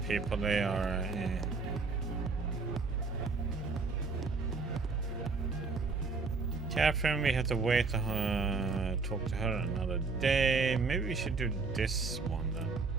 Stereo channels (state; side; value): quieter; left; 4.3 dB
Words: people. They are. Catherine, we have to wait to talk to her another day. Maybe we should do this one then.